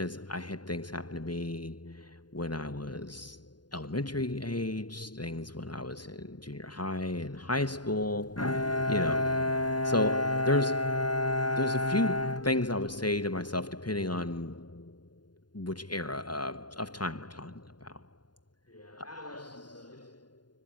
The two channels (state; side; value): late; right; 0.70 ms